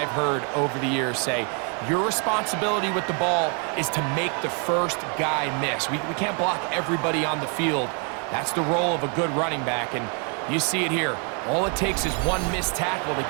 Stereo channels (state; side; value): quieter; left; 39.2 dB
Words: heard over the years say, your responsibility with the ball is to make the first guy miss. We can't block everybody on the field. That's the role of a good running back, and you see it here. All it takes is one missed tackle to